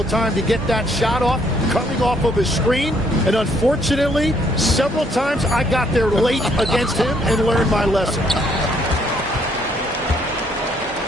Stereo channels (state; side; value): normal; both; correlation 0.68